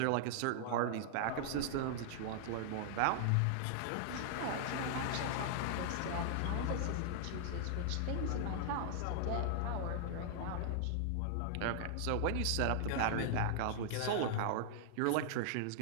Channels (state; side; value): different; both; correlation -0.01